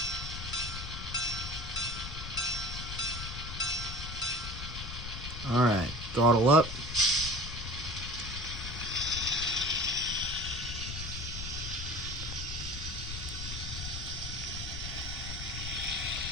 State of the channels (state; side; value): noise; left; rumble, 7 dB below the sound